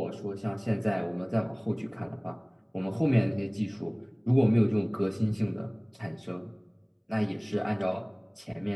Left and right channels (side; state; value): both; identical; correlation 1.00